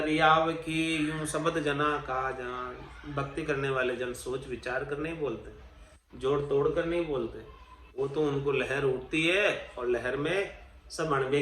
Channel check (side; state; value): both; identical; correlation 1.00